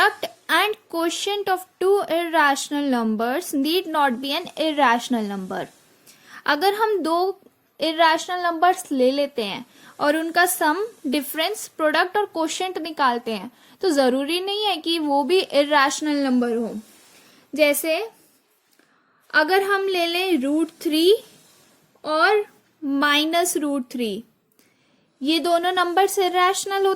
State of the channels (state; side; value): identical; both; correlation 1.00